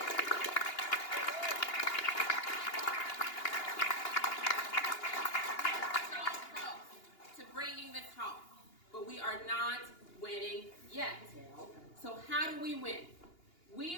But we are not winning yet. So how do we win?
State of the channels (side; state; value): right; late; 2.8 ms